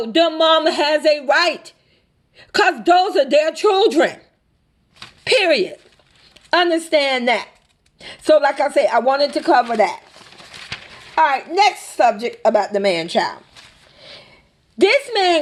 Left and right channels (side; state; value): both; identical; correlation 1.00